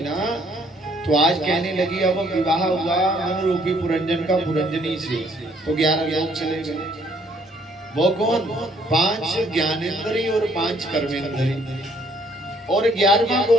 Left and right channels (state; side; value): normal; both; correlation 0.64